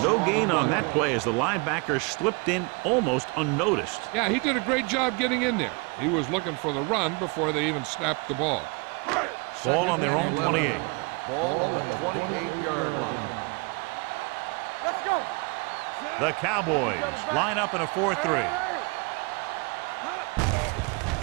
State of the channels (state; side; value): quieter; left; 30.4 dB